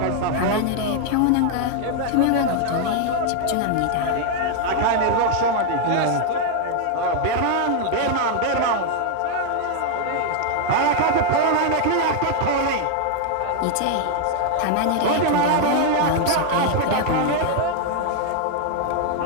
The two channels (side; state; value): both; different; correlation 0.00